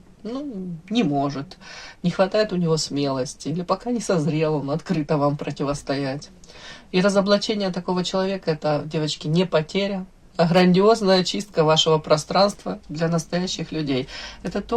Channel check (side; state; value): both; identical; correlation 1.00